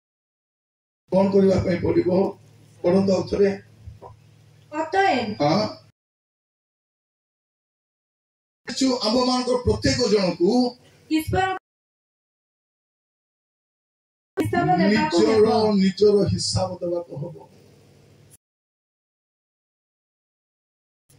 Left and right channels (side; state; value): both; identical; correlation 1.00